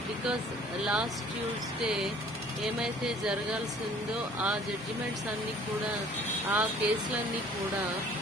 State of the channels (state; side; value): normal; both; correlation 0.53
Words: because last Tuesday ఏమైతే జరగాల్సిందో ఆ judgements అన్నీ కూడా, ఆ కేసులన్నీ కూడా